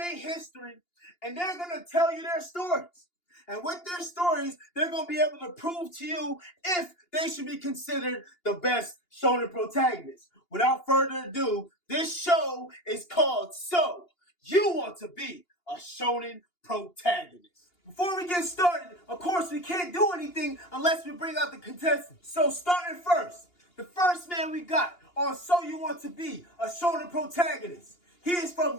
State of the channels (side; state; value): right; late; 2.8 ms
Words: history, and they're going to tell you their stories. And with their stories, they're going to be able to prove to you if they should be considered the best shonen protagonists. Without further ado, this show is called So You Want to Be a Shonen Protagonist. Before we get started, of course, we can't do anything unless we bring out the contestants. So starting first, the first man we got on So You Want to Be a Shonen Protagonist. He is